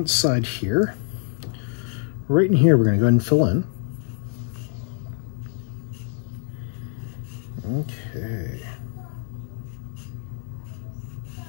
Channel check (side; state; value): right; silent; 62 dB below the other